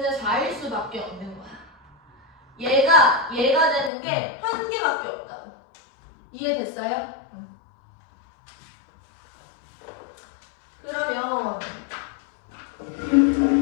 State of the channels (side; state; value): right; drops out; at 3.9 s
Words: 4일 수밖에 없는 거야. 얘가 되는 게 한 개밖에 없다고. 이해됐어요? 그러면